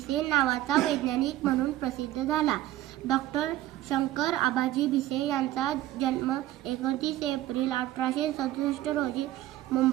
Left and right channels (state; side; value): quieter; left; 14.6 dB